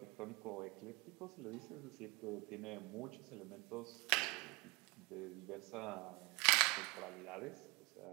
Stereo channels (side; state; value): left; quieter; 27.1 dB